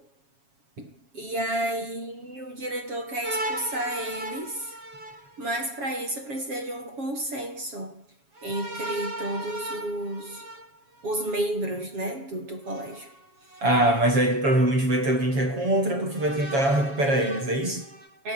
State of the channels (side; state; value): left; late; 7.3 ms